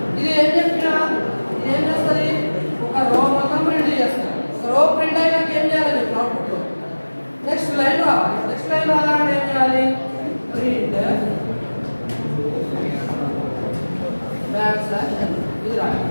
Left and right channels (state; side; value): inverted; both; correlation -1.00